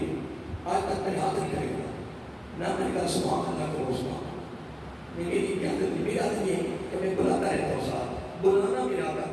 آج تک میں ہاتھ نہیں کھڑے گا. نہ میں نے کہا سبحان اللہ کرو سبحان. میری عادت میری عادت یہ ہے کہ میں بلاتا رہتا ہوں. صاحب بلانا میرا آقا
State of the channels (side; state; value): both; identical; correlation 1.00